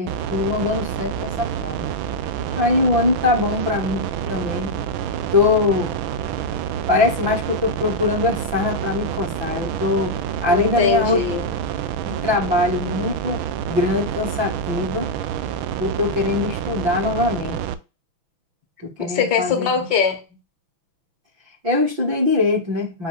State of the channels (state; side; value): late; left; 5.8 ms